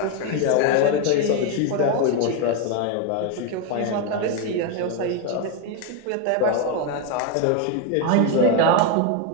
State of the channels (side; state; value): both; different; correlation 0.02